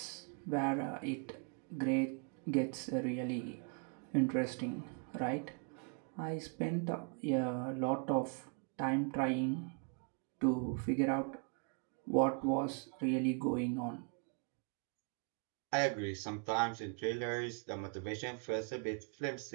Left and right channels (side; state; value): left; quieter; 35.7 dB